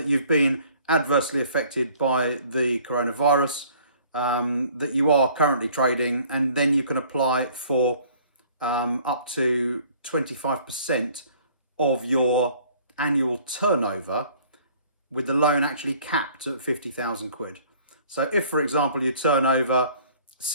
you've been adversely affected by the coronavirus, that you are currently trading, and then you can apply for up to 25% of your annual turnover, with the loan actually capped at 50,000 quid. So if, for example, you turn over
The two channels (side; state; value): both; inverted; correlation -0.55